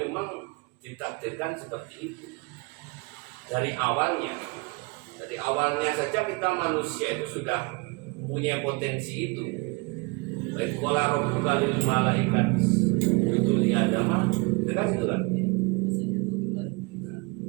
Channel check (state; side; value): quieter; left; 28.0 dB